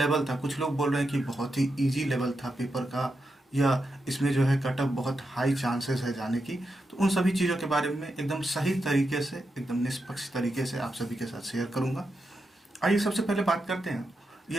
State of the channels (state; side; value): normal; both; correlation 0.86